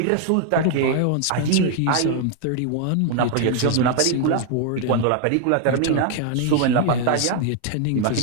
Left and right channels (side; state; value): both; different; correlation 0.00